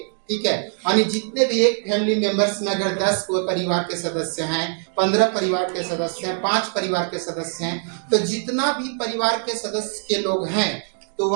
ठीक है, यानी जितने भी एक फैमिली मेंबर्स में अगर 10 परिवार के सदस्य हैं, 15 परिवार के सदस्य हैं, 5 परिवार के सदस्य हैं, तो जितना भी परिवार के सदस्य के लोग हैं तो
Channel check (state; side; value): silent; left; 56 dB below the other